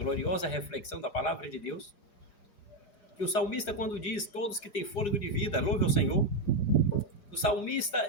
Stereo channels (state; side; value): late; right; 4.9 ms